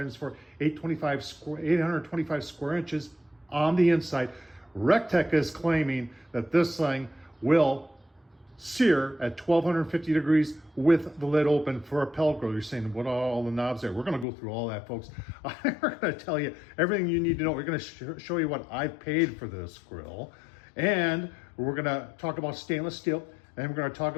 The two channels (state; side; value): drops out; right; at 14.2 s